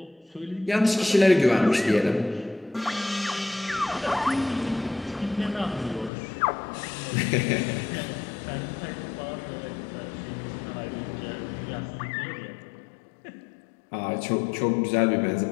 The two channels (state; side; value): drops out; right; at 6.1 s